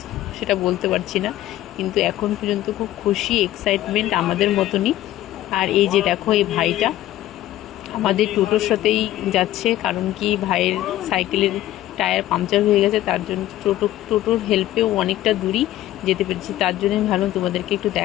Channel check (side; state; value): right; quieter; 14.3 dB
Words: সেটা বলতে পারছি না। কিন্তু এখন পর্যন্ত খুব খুশি, এক্সাইটমেন্ট আমাদের মতনই। আর এই যে দেখো, এই ভাইটা আমাদের টোটোর সাথেই যাচ্ছে। কারণ কি, ভাইয়ের সাইকেলের টায়ার পাংচার হয়ে গেছে, তার জন্য টোটোর হেল্পেও অনেকটা দূরই যেতে পেরেছি। তার জন্য আমি ভাবলাম তোমাদেরকে একটু